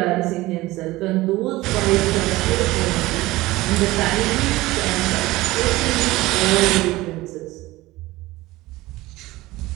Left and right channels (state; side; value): quieter; left; 18.9 dB